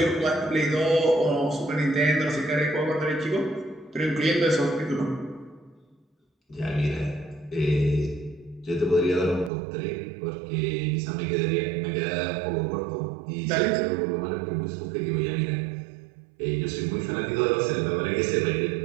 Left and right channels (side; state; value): left; drops out; at 9.5 s